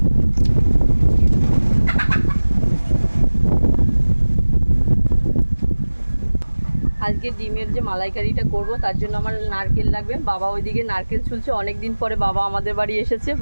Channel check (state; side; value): inverted; both; correlation -1.00